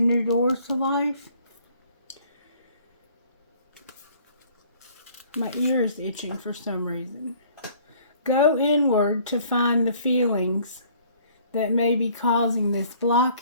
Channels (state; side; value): inverted; both; correlation -0.57